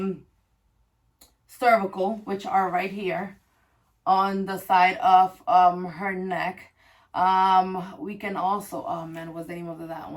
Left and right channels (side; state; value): both; identical; correlation 1.00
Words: cervical, which are right here on the side of her neck. We can also, oh man, what's the name of that